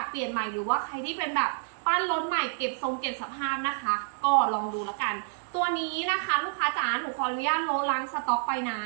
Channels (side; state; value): left; silent; digital silence